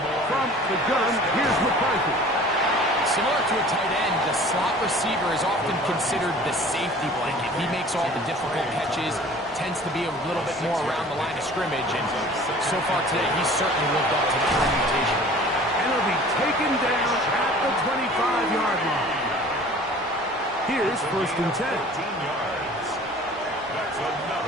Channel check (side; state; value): both; normal; correlation 0.46